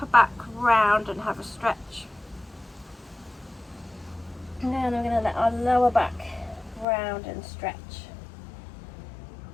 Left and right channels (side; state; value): right; drops out; at 6.9 s